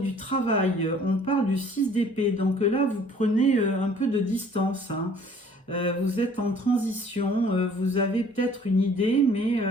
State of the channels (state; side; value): normal; both; correlation 0.55